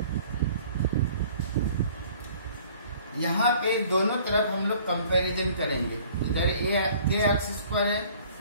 यहाँ पे दोनों तरफ हम लोग कंपैरिजन करेंगे, इधर k एक्स स्क्वायर है,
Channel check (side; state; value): both; inverted; correlation -0.53